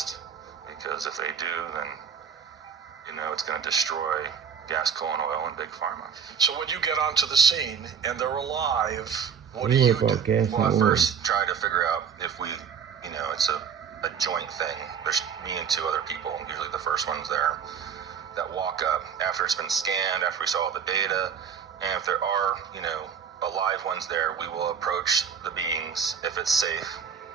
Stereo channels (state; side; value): quieter; left; 7.1 dB